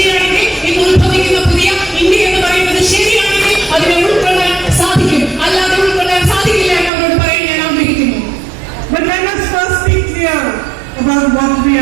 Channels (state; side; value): drops out; left; at 6.9 s